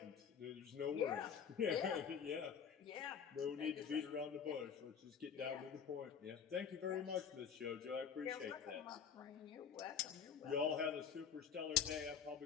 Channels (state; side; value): quieter; right; 7.3 dB